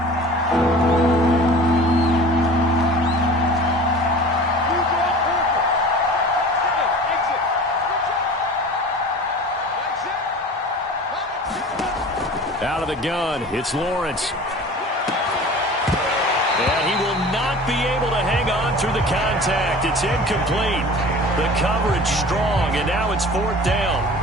Out of the gun, it's Lawrence. And he will not be able to hang on through the contact. It's incomplete. The coverage strong, and now it's 4th down.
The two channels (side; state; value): both; normal; correlation 0.41